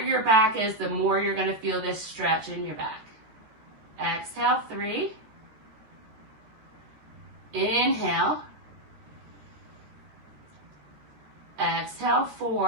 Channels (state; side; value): late; left; 14 ms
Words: back is, the more you're going to feel this stretch in your back. Exhale, 3. Inhale. Exhale,